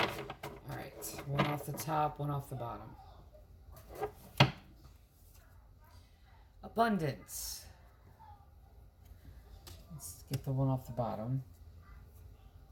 right, one off the top, one off the bottom. Abundance. Let's get the one off the bottom.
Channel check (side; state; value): both; identical; correlation 1.00